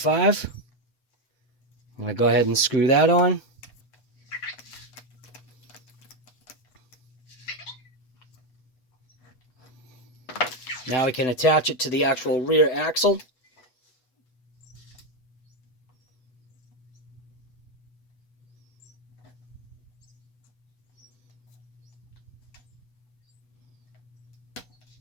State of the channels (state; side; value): late; right; 8.1 ms